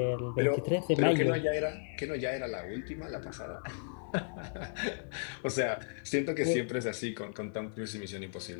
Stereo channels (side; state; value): right; silent; digital silence